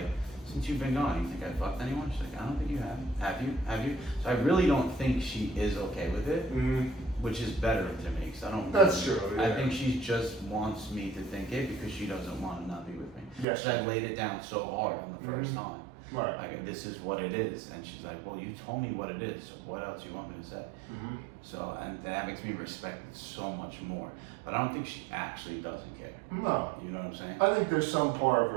since you've been gone, you think I fucked anyone? She's like, I don't think you have. Have you? Have you? So I really don't think she is okay with it, which is better to me because I don't. That's true. Yeah. I think she just wants me to think it because she doesn't want to not be with me. Yes. So I laid it down so hard on the first time. Right. Like, this is what it is. And she's like, well, you told me what it is, so what else you want me to say? So, and that makes me respect it so much more. But I don't think she actually doesn't care. No. You know what I'm saying? I think there's some part of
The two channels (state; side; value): drops out; left; at 13.5 s